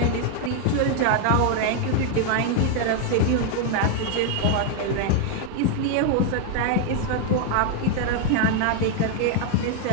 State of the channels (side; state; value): both; different; correlation 0.00